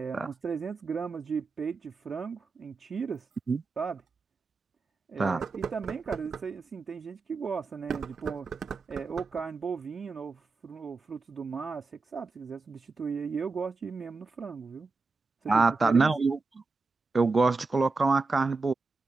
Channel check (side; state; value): left; quieter; 4.0 dB